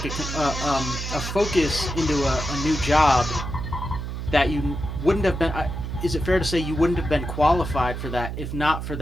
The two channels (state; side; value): noise; right; hum, 6 dB below the sound